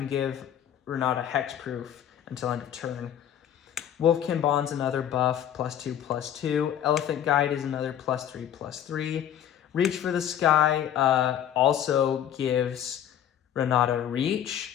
give Renata hexproof until end of turn. Wolfkin Bond's another buff, +2/+2. Elephant Guide is another +3/+3. Reach for the Sky also gives Renata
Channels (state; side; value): quieter; right; 10.2 dB